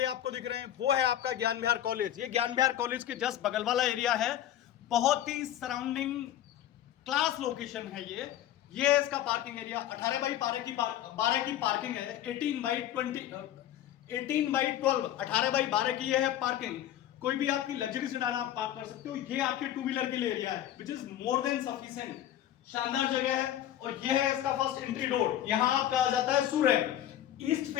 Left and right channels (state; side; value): quieter; right; 12.0 dB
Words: आपको दिख रहे हैं वो है आपका ज्ञान विहार कॉलेज। ये ज्ञान विहार कॉलेज के जस्ट बगल वाला एरिया है। बहुत ही सराउंडिंग क्लास लोकेशन है ये है इसका पार्किंग एरिया। 18 बाई 12 की पार्किंग है। 18 बाई 12 18 बाई 12 की ये है पार्किंग। कोई भी आपकी लग्जरी सेडान आप पार्क कर सकते हो। ये आपके टू व्हीलर के लिए एरिया है which is more than sufficient. शानदार जगह है। और ये है इसका फर्स्ट एंट्री डोर। यहां आपका आ जाता है सूरज। ईस्ट